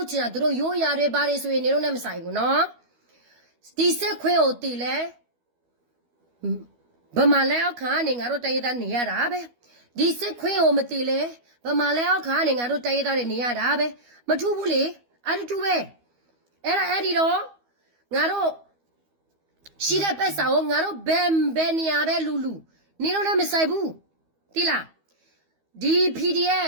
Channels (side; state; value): left; late; 12 ms